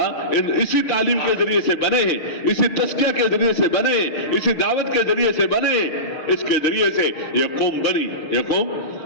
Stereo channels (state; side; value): late; right; 6.5 ms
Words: اسی تعلیم کے ذریعے سے بنے ہیں، اسی تزکیہ کے ذریعے سے بنے ہیں، اسی دعوت کے ذریعے سے بنے ہیں، اس کے ذریعے سے یہ قوم بنی، یہ قوم